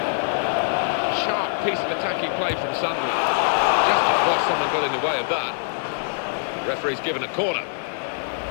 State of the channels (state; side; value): silent; right; digital silence